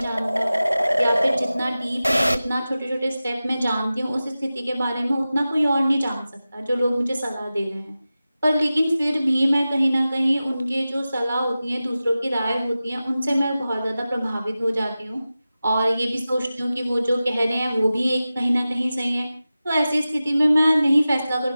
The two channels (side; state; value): both; inverted; correlation -0.95